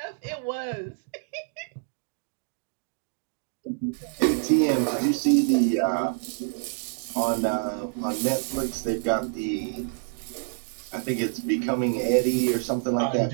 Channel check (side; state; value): left; silent; digital silence